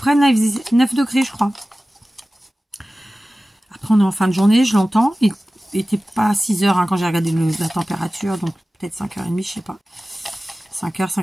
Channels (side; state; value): both; normal; correlation 0.96